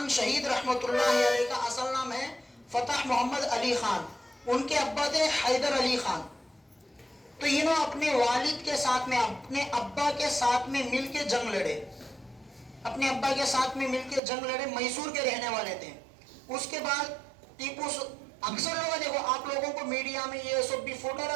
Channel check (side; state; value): left; drops out; at 14.2 s